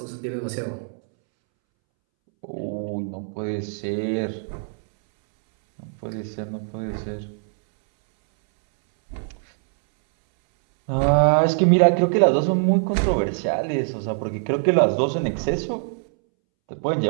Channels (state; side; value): silent; left; 64 dB below the other